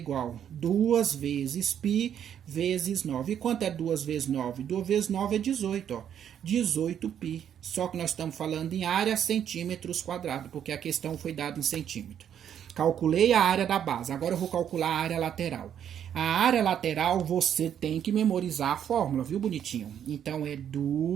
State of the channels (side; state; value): left; quieter; 9.3 dB